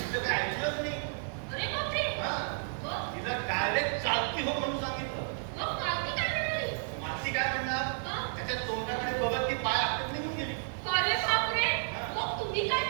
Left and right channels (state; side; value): silent; left; digital silence